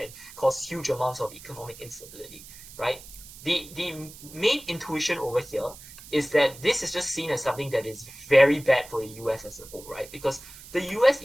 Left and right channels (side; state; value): right; noise; hiss, 17 dB below the sound